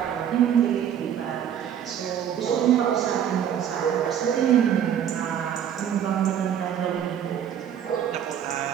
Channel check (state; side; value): quieter; left; 9.3 dB